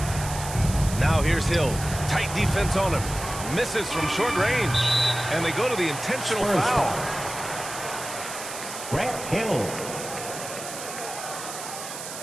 Now here's Hill. Tight defense on him. Misses from short range. And they go to the intentional Spurs foul. foul. Grant Hill.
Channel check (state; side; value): noise; right; hiss, 9 dB below the sound